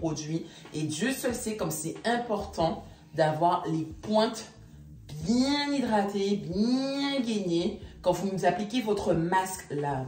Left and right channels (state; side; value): identical; both; correlation 1.00